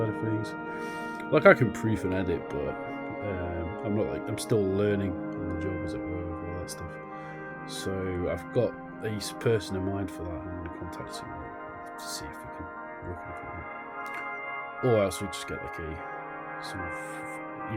of things. Like, I can proof and edit, but I'm still learning on the job, as it were, with all that stuff. So I've got a person in mind for that, and I'm going to contact him to see if we can work anything out. Or else we just get like a sort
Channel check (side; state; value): both; identical; correlation 1.00